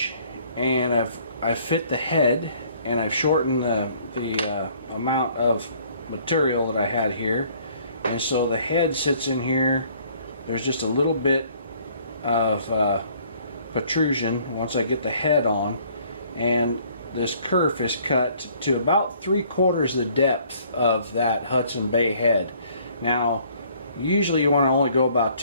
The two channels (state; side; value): inverted; both; correlation -0.59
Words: and I've fit the head, and I've shortened the amount of material that I had here, and so the head sits in here. There's just a little bit of protrusion once I get the head on, and this kerf is cut to about 3/4 the depth of that Hudson Bay head. Now, usually you want to only go about